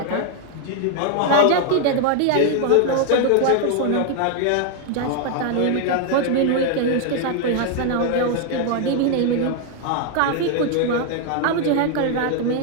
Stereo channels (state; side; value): different; both; correlation 0.00